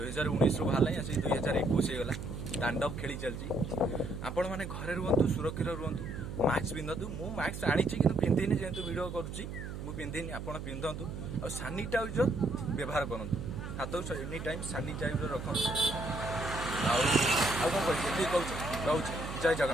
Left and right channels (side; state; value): right; noise; hum, 7 dB below the sound